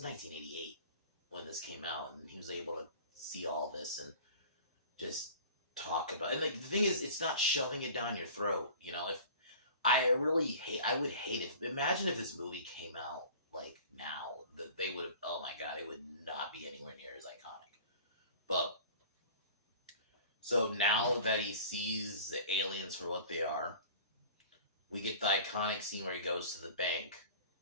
1988 when this came out, and he was able to see all this and just talk about it. And like the thing is, it's not shoving it down your throat. If I would hate imagine if this movie came out like now, that they would have, oh my god, it would not be anywhere near as iconic. But so now that he sees the aliens for what they are, we get the iconic scene where he goes to the bank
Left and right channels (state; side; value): inverted; both; correlation -0.42